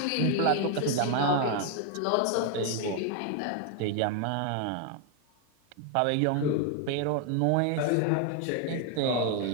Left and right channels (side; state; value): both; different; correlation 0.01